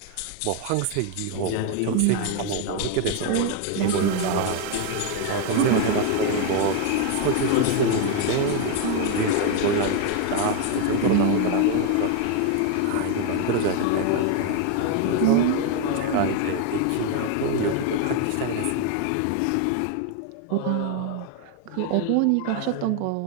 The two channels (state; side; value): different; both; correlation 0.01